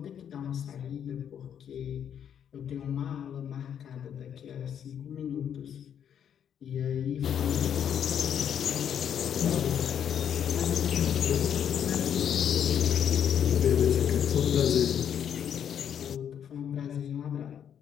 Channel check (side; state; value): right; quieter; 8.9 dB